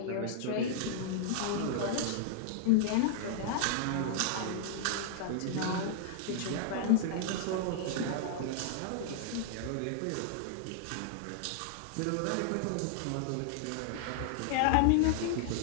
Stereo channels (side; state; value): both; different; correlation -0.01